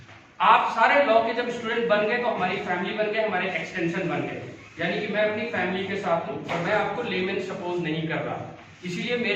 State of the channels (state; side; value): identical; both; correlation 1.00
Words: आप सारे लॉ के जब स्टूडेंट बन गए तो हमारी फैमिली बन गए, हमारे एक्सटेंशन बन गए, यानी कि मैं अपनी फैमिली के साथ हूं और मैं आपको लेमैन सपोज नहीं कर रहा, इसीलिए